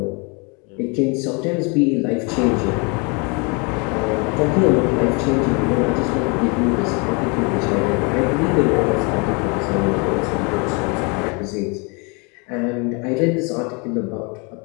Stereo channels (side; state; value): right; quieter; 31.9 dB